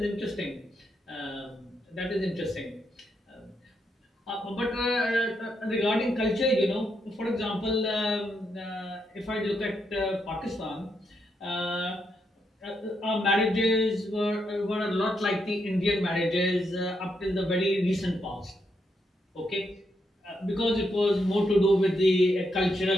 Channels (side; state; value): both; normal; correlation 0.80